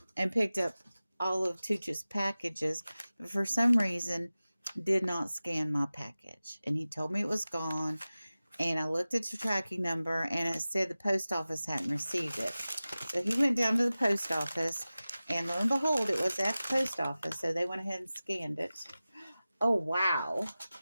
picked up all of Tooch's packages, but for some reason did not scan my package, and he told me it was gone. And I looked at the tracking number, and it said the post office hadn't received it. So he went down to the post office, and lo and behold, it was at the post office. So they went ahead and scanned it. Oh, wow.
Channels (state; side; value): inverted; both; correlation -0.96